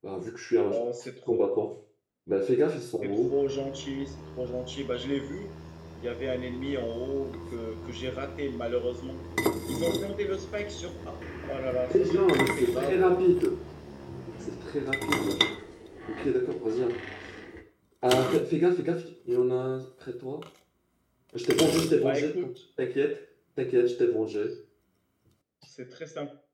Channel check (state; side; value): identical; both; correlation 1.00